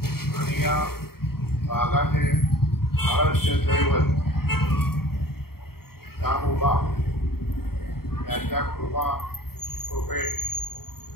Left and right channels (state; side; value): late; right; 0.94 ms